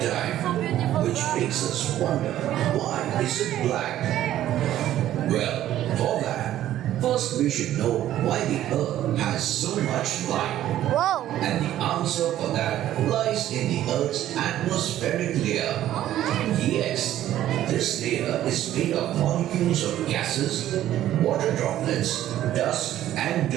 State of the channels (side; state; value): left; quieter; 12.7 dB